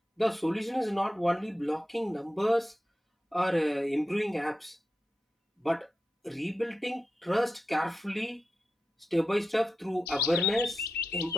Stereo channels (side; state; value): both; normal; correlation 0.91